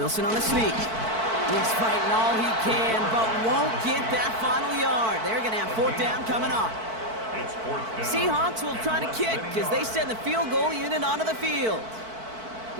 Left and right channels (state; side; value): late; left; 4.5 ms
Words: on the sneak. He's fighting all he can, but won't get that final yard. They're going to have fourth down coming up. It's fourth down. Seahawks will try to kick as they send the field goal unit onto the field.